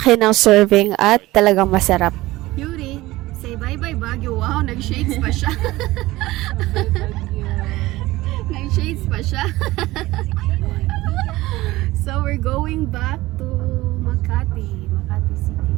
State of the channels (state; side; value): quieter; left; 18.4 dB